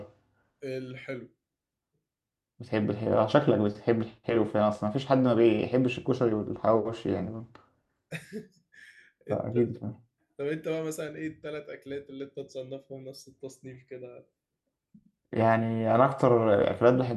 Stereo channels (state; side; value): identical; both; correlation 1.00